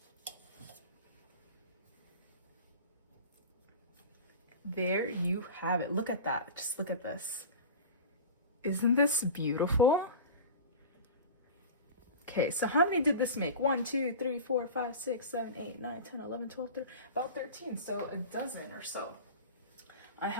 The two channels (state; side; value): inverted; both; correlation -0.33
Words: There you have it. Look at that. Just look at this. Isn't this beautiful? Okay, so how many did this make? 1, 2, 3, 4, 5, 6, 7, 8, 9, 10, 11, 12, 13, about 13. So a dozen or so. I